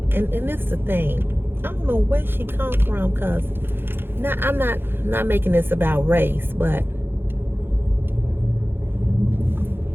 And this is the thing. I don't know where she come from, cause I'm not making this about race, but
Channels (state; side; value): late; left; 0.10 ms